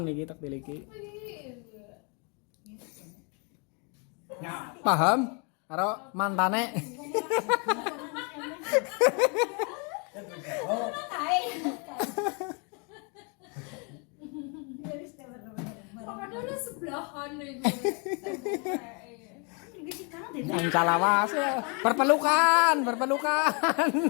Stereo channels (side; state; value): right; quieter; 34.7 dB